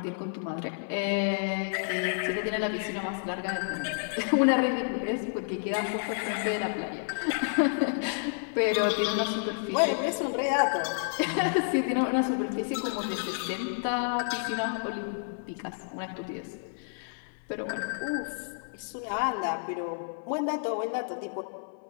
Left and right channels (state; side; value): silent; right; 58 dB below the other